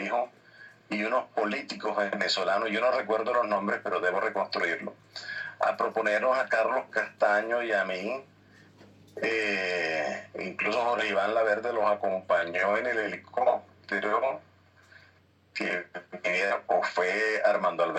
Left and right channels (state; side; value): identical; both; correlation 1.00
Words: y unos políticos venezolanos, yo no recuerdo los nombres, pero debo reconstruirlo, a proponernos a Carlos Castaño y a mí. Incluso Jorge Iván Laverde los acompañó en el helicóptero, o fue Armando